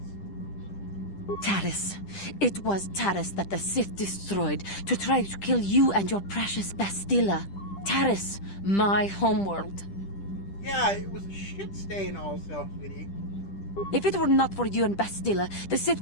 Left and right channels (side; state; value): right; late; 10 ms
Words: Taris. It was Taris that the Sith destroyed to try to kill you and your precious Bastilla. Taris, my homeworld. Yeah, it was a shit stain also, sweetie. If it were not for you and Bastilla, the Sith